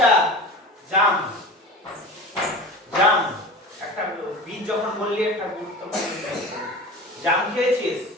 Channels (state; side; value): normal; both; correlation 0.34